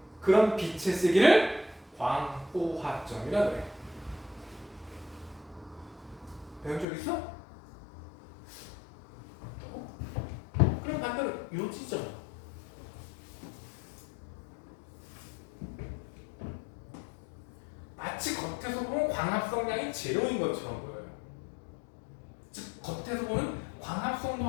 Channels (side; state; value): right; drops out; at 6.9 s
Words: 그런 빛의 세기를 광포화점이라 그래. 배운 적 있어? 그럼 반대로 요 지점. 마치 겉에서 보면 광합성량이 제로인 것처럼 보여요. 즉 겉에서 보면